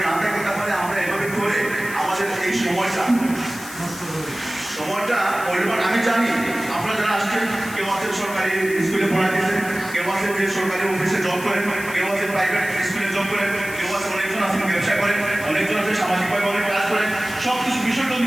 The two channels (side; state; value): left; noise; hiss, 14 dB below the sound